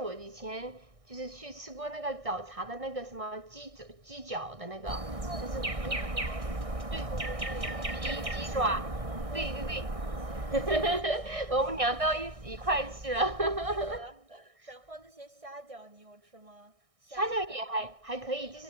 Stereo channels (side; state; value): left; late; 1.6 ms